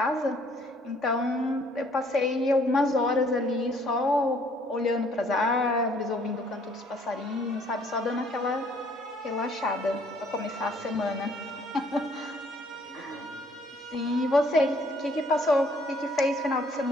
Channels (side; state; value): both; normal; correlation 0.62